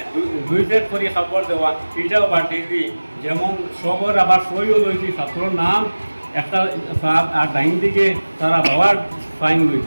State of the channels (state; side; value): inverted; both; correlation -1.00